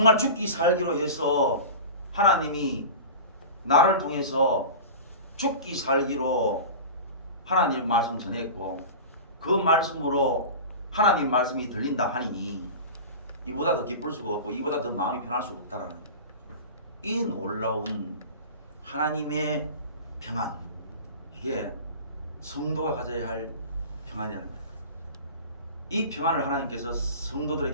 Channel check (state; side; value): inverted; both; correlation -0.32